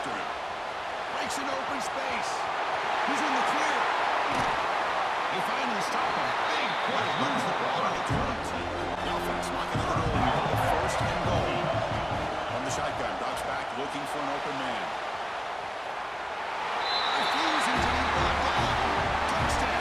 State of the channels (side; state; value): both; identical; correlation 1.00